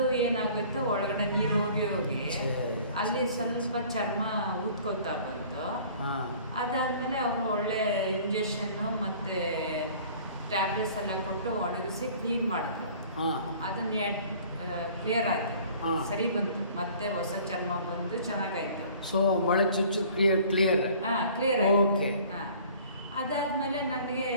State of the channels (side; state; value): both; inverted; correlation -0.50